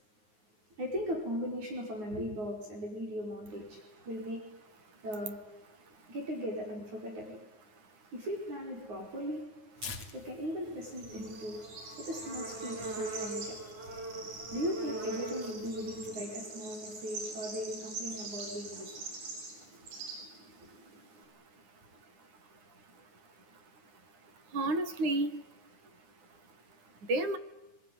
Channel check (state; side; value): late; left; 9.4 ms